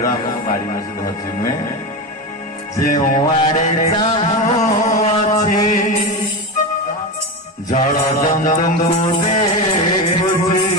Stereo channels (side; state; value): both; normal; correlation 0.19